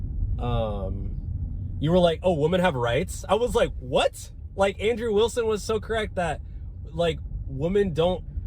oh, women have rights? I was like, what? Like, Andrew Wilson was so correct that, like, women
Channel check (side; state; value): both; identical; correlation 1.00